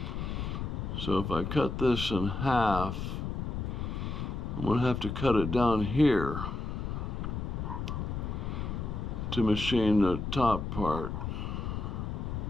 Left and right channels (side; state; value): left; noise; rumble, 3 dB below the sound